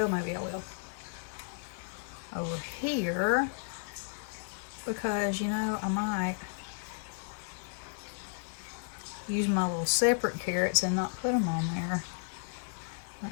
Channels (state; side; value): silent; right; digital silence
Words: maybe I will. Over here, because you know, I might use my little separate carrots and not put them on there.